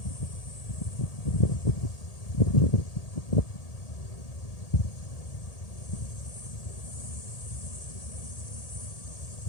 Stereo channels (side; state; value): right; late; 1.8 ms